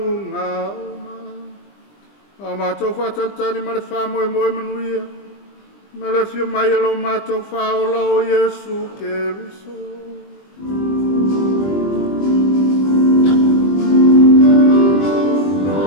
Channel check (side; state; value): right; late; 20 ms